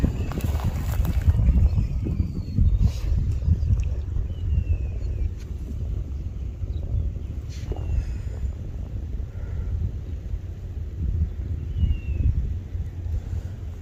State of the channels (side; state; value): both; identical; correlation 1.00